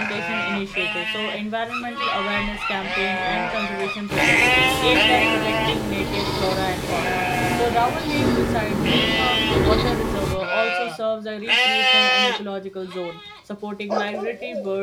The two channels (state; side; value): identical; both; correlation 1.00